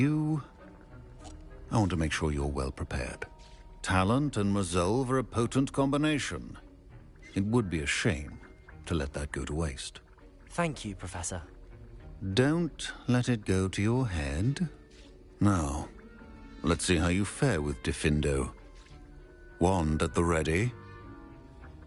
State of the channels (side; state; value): both; identical; correlation 1.00